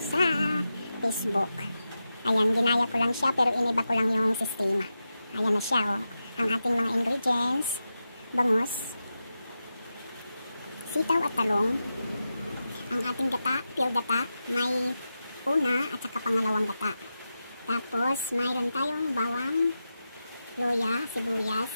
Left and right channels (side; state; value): both; inverted; correlation -0.90